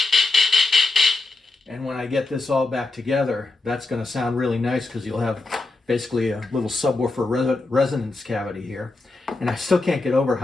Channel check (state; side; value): quieter; right; 3.2 dB